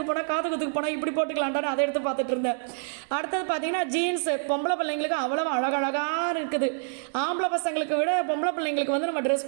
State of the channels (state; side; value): silent; left; digital silence